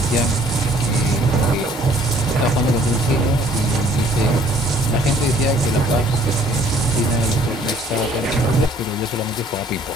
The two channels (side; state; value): both; normal; correlation 0.59